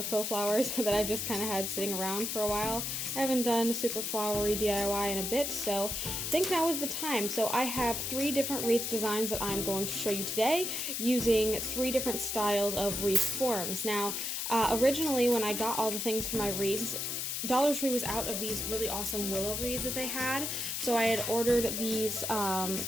faux flowers that I've just kind of had sitting around for a while. I haven't done super flowery DIY in a bit, so I think now is the time. So I have 3 different wreath designs that I'm going to show you today using 3 different styles of wreath forms. Now, originally when I got all the things for my wreaths, Dollar Tree was out of these really awesome willow wreaths that they had, so I had ordered these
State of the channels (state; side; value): noise; left; hiss, 2 dB below the sound